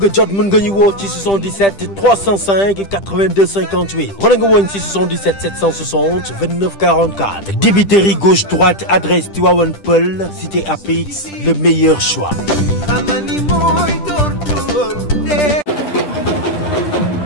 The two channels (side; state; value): right; late; 10 ms